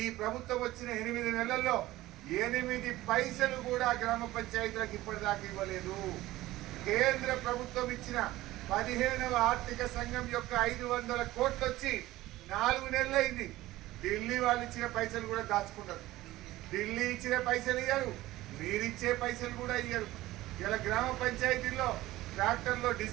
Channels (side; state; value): left; quieter; 16.9 dB